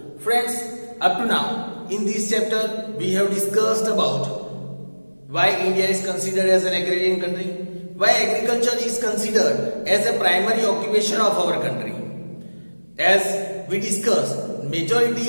Friends, up to now, in this chapter, we have discussed about why India is considered as an agrarian country, why agriculture is considered as a primary occupation of our country. As we discussed,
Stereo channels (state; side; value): inverted; both; correlation -1.00